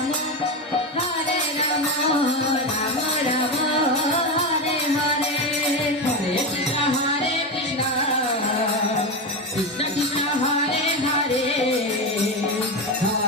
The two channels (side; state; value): both; normal; correlation 0.16